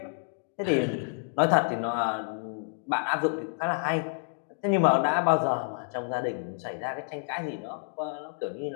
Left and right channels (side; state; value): right; silent; digital silence